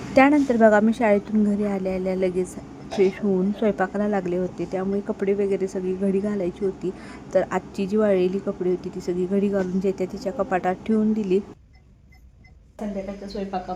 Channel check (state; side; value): identical; both; correlation 1.00